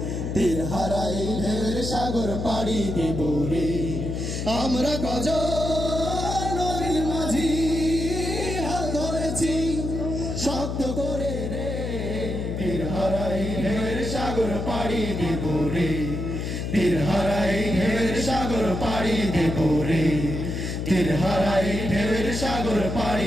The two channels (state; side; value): noise; left; hum, 3 dB below the sound